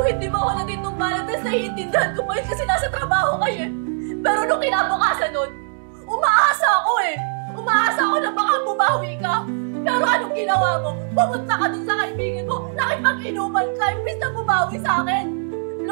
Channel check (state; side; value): silent; left; digital silence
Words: hindi mo ako na dito ng Valentine's, naiintindihan ko pa yun kasi nasa trabaho kayo eh. Pero nung kinabukasan nun, umaasa ako eh. Umaasa ako na baka bumawi ka. Pero anong ginawa mo? Pumunta ka dun sa kaibigan mo, nakipag-inuman ka, imbis na bumawi sa akin.